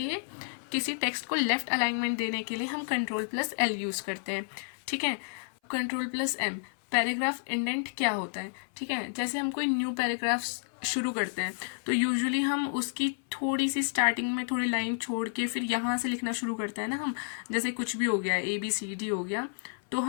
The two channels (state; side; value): silent; right; 57 dB below the other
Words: किसी टेक्स्ट को लेफ्ट अलाइनमेंट देने के लिए हम कंट्रोल प्लस एल यूज़ करते हैं, ठीक है। Control plus M, paragraph indent क्या होता है, ठीक है। जैसे हम कोई न्यू पैराग्राफ शुरू करते हैं तो यूजुअली हम उसकी थोड़ी सी स्टार्टिंग में थोड़ी लाइन छोड़ के फिर यहाँ से लिखना शुरू करते हैं ना हम, जैसे कुछ भी हो गया ABCD हो गया, तो